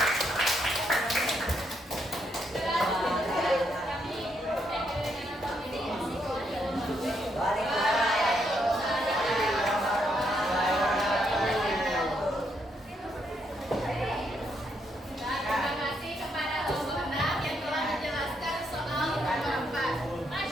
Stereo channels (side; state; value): both; normal; correlation 0.76